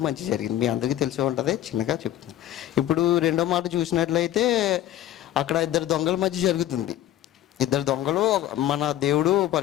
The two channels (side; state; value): right; quieter; 12.9 dB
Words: మంచి జరిగింది. మీ అందరికీ తెలిసే ఉంటుంది, చిన్నగా చెప్తున్నాను. ఇప్పుడు రెండో మాట చూసినట్లయితే అక్కడ ఇద్దరు దొంగల మధ్య జరుగుతుంది. ఇద్దరు దొంగలు, మన దేవుడు